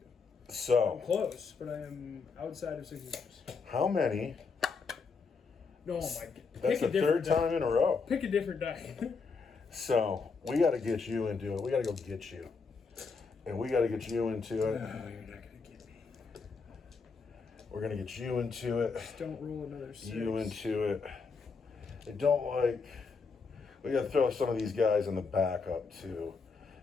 I'm So, close, but I am outside of 6 inches. how many? No, my God. That's the third time in a row. Pick a different die. So, we got to get you into it. We got to go get you. And we got to get you into it. You're not going to get me. We're going to get you into it. Just don't roll another 6. You into it. I don't like. We got to throw some of these guys in the backup too.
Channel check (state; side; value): quieter; right; 4.8 dB